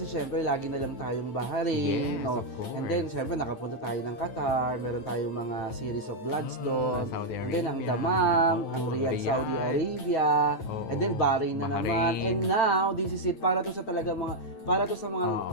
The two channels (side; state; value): right; late; 9.0 ms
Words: syempre lagi na lang tayong Bahrain. Yes, no? of course. And then syempre nakapunta tayo ng Qatar, meron tayong mga series of Bloodstone. Saudi And then ang Arabia. Damam, Oo, ang Riyadh, Riyadh. Saudi Arabia. Oo. And then Bahrain na naman. Bahrain. And now, this is it para to sa mga